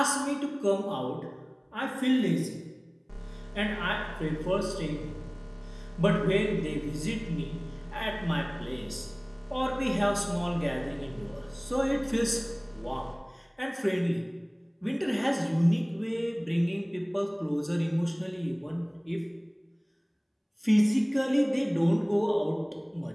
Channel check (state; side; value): identical; both; correlation 1.00